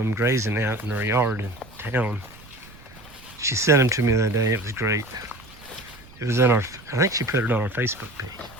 grazing out in her yard in town. She sent them to me the other day. It was great. It was I think she put it on our Facebook page.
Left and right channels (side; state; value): right; noise; rumble, 22 dB below the sound